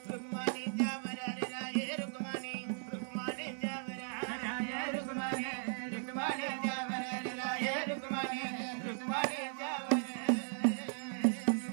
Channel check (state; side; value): silent; left; digital silence